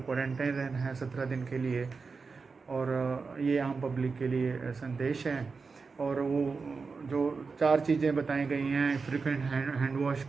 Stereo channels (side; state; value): left; quieter; 4.7 dB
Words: क्वारंटाइन रहना है 17 दिन के लिए। और ये आम पब्लिक के लिए संदेश है। और वो जो 4 चीज़ें बताई गई हैं, फ्रिक्वेंट हैंड वॉश